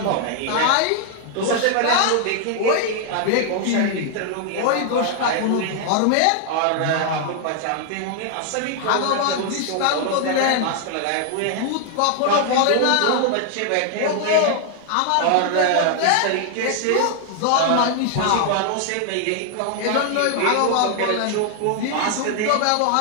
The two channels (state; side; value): different; both; correlation 0.00